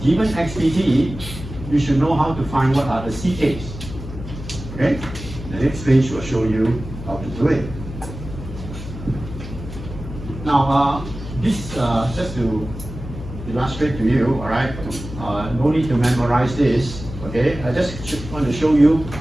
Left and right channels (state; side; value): noise; left; hum, 11 dB below the sound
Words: given XPT, you should know how to find what are the CKs. Okay? The next page will show you how to do it. Now, this just to illustrate to you, all right? No need to memorize this. Okay? I just want to show you